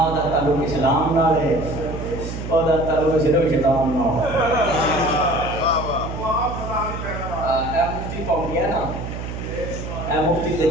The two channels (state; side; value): noise; right; hum, 7 dB below the sound